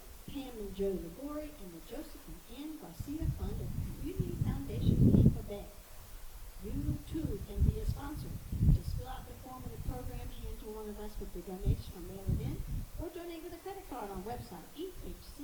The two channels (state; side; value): identical; both; correlation 1.00